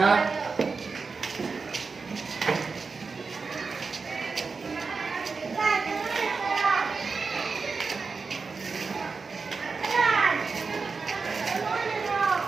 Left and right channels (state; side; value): quieter; left; 4.6 dB